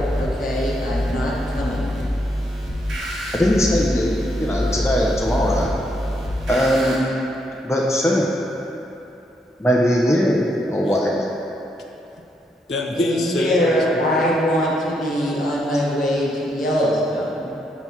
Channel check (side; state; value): both; normal; correlation 0.78